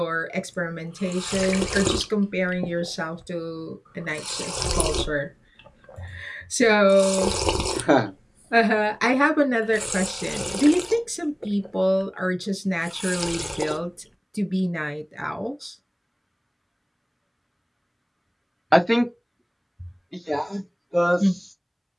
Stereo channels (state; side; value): identical; both; correlation 1.00